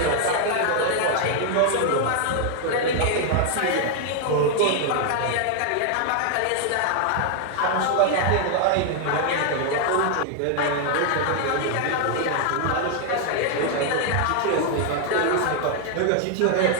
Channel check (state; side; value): different; both; correlation 0.00